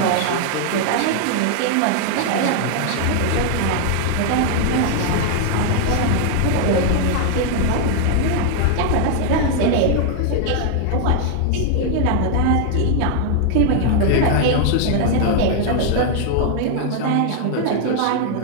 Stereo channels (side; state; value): both; different; correlation 0.00